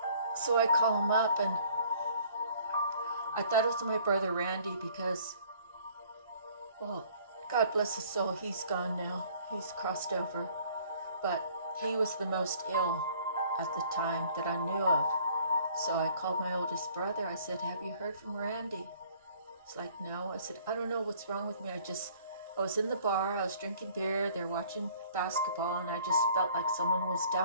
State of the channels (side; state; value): both; inverted; correlation -0.56